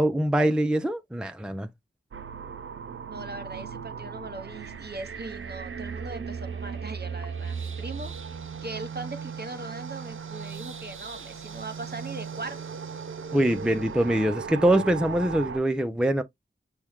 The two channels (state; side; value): normal; both; correlation 0.81